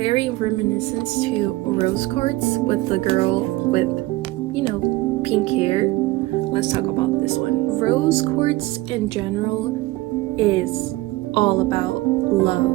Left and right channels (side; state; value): left; quieter; 19.1 dB